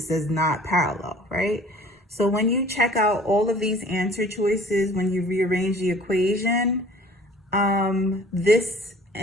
says not parallel, right? So when you check out all of these answer choices, when you rearrange the equation, this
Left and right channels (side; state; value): both; normal; correlation 0.49